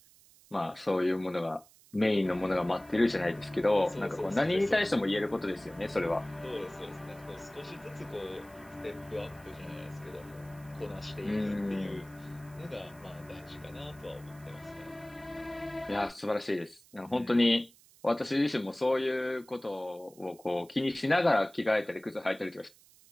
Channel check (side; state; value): right; noise; hiss, 26 dB below the sound